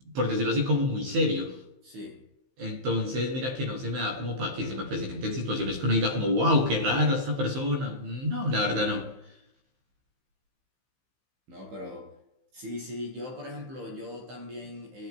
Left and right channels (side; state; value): left; late; 15 ms